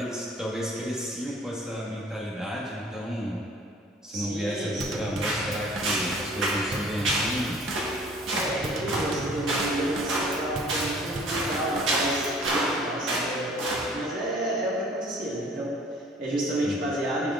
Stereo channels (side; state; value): both; normal; correlation 0.52